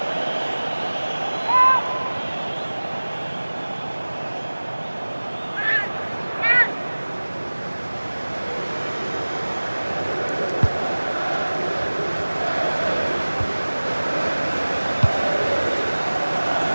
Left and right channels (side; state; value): both; inverted; correlation -1.00